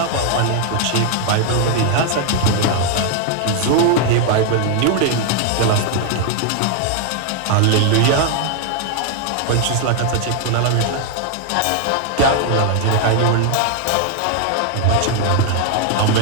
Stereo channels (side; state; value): both; different; correlation 0.00